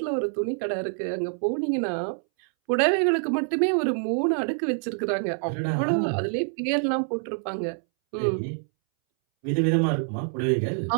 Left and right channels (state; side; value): silent; left; 61 dB below the other